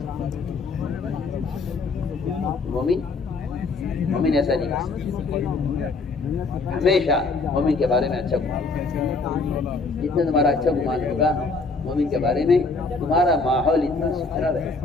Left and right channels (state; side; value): quieter; right; 3.9 dB